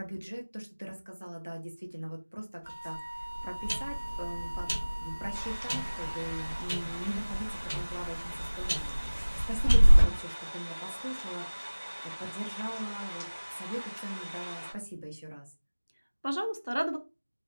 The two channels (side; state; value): both; inverted; correlation -1.00